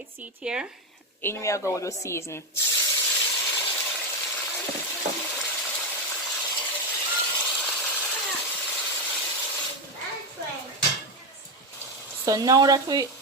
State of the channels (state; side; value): normal; both; correlation 0.10